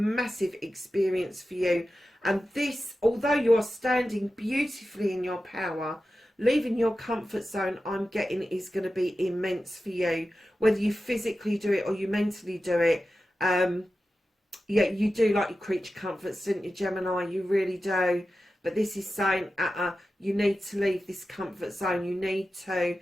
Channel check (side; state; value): both; normal; correlation 0.93